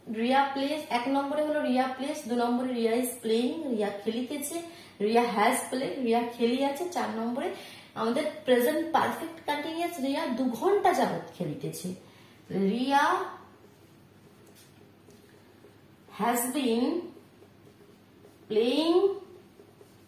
রিয়া প্লেস। 1 নম্বরে হলো রিয়া প্লেস, 2 নম্বরে রিয়া ইজ প্লেইং, রিয়া খেলিতেছে, রিয়া হ্যাজ প্লেড, রিয়া খেলি আছে। 4 নম্বরে আমাদের প্রেজেন্ট পারফেক্ট কন্টিনিউয়াস, রিয়া 2 ঘন্টা যাবত খেলিতেছে। Riya has been playing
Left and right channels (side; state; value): both; identical; correlation 1.00